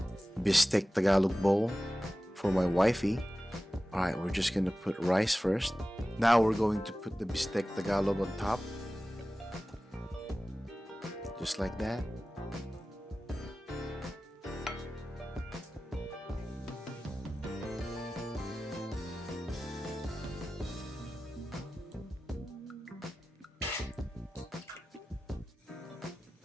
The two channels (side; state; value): both; normal; correlation 0.95